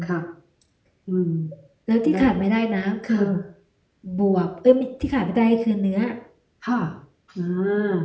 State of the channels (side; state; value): both; identical; correlation 1.00